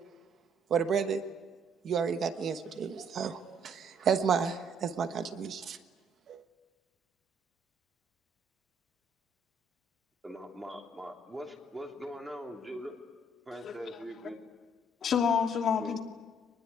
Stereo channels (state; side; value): normal; both; correlation 0.66